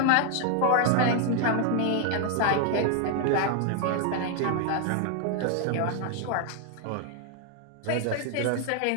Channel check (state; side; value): different; both; correlation 0.00